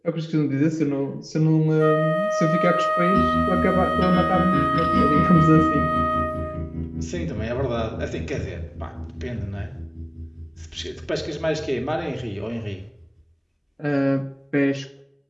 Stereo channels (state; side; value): identical; both; correlation 1.00